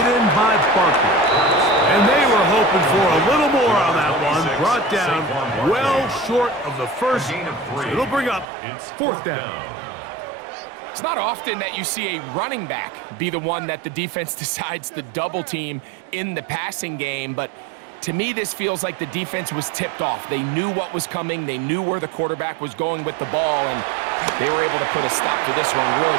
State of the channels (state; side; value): drops out; left; at 8.5 s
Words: in by Barkley. And they were hoping for a little more on that one. Brought down well short of the first. So it'll bring up 4th down. It's not often that you see a running back be the one that the defense decides to double team in the passing game, but to me, this feels like the defense was tipped off. They knew what was coming. They knew where the quarterback was going with the ball, and they were able to put a stop to this one really